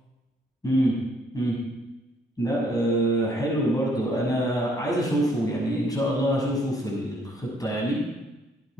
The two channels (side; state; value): both; normal; correlation 0.66